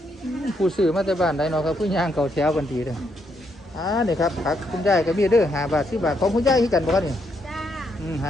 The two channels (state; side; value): normal; both; correlation 0.76